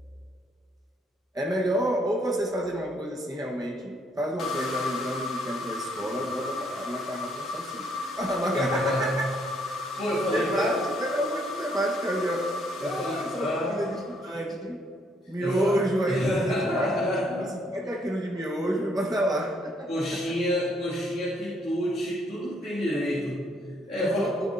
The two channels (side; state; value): both; normal; correlation 0.69